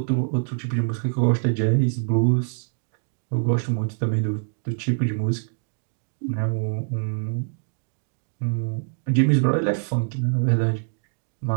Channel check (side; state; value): left; silent; digital silence